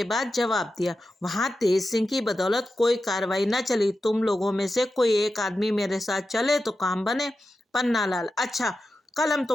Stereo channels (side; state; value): both; normal; correlation 0.91